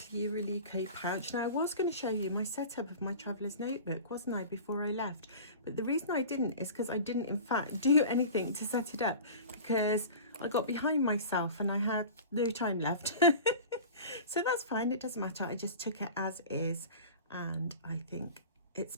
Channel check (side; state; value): both; inverted; correlation -0.36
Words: pouch. Now I was going to show you my setup of my traveller's notebook, wasn't I, before I left? But the reason I didn't is because I didn't in fact do anything to set it up because I got behind myself and I had no time left. So that's fine, it doesn't matter. I just took it as is and I think it's